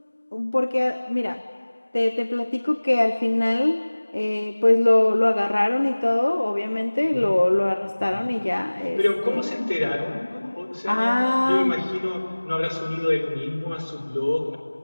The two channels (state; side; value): inverted; both; correlation -1.00